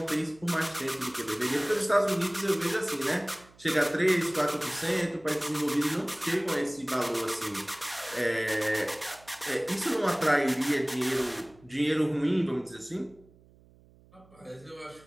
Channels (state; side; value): noise; right; hum, 27 dB below the sound